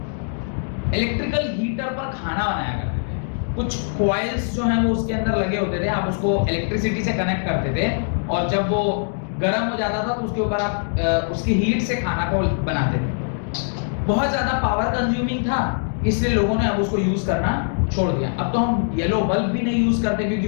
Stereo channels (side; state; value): right; silent; digital silence